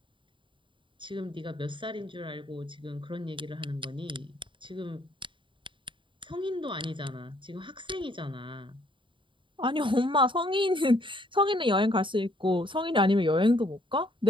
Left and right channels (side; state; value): left; late; 0.24 ms